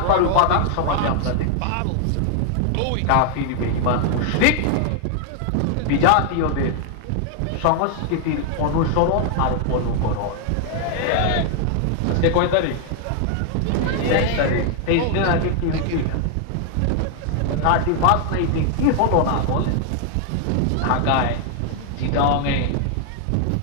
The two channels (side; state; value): both; different; correlation 0.00